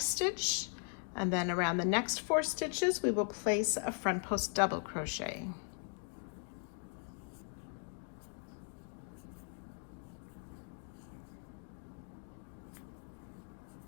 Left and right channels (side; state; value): right; silent; 52 dB below the other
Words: stitch, and then around the next 4 stitches we will place a front post double crochet.